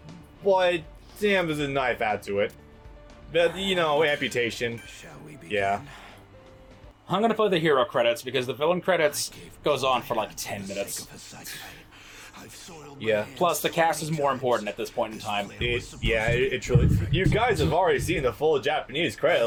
but damn, there's a knife add to it. But you know, amputation. Shall we begin? Yeah. I'm gonna play the hero credits because the villain credits goes on for like 10 minutes. Yeah. Plus, the cast is more important at this point in time. It truly. You guys have already seen the full Japanese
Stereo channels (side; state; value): both; identical; correlation 1.00